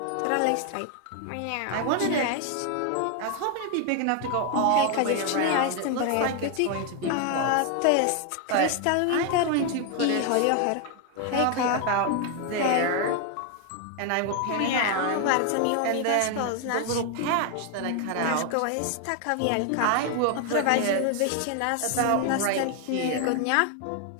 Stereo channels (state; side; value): different; both; correlation 0.01